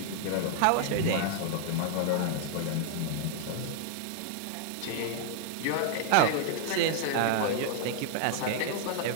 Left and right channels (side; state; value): both; different; correlation 0.00